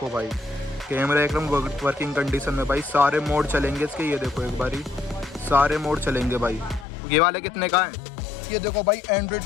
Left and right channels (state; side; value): drops out; right; at 6.9 s